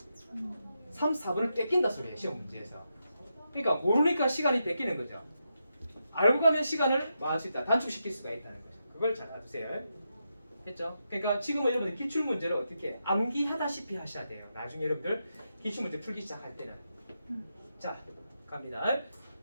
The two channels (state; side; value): inverted; both; correlation -0.85